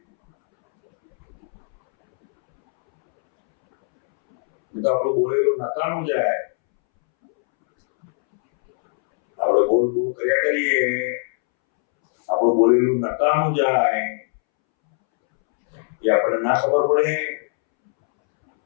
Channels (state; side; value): silent; right; 65 dB below the other